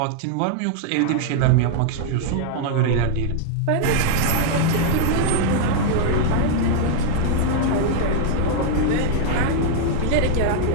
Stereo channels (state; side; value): different; both; correlation -0.01